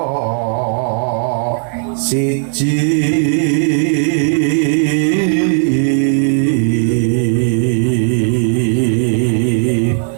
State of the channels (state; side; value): silent; left; 55 dB below the other